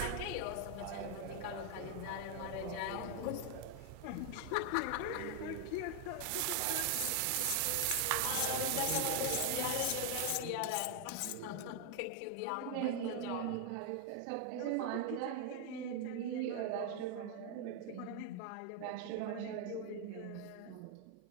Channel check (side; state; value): both; different; correlation 0.00